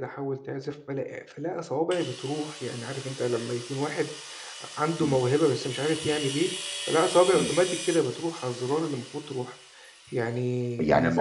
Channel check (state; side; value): identical; both; correlation 1.00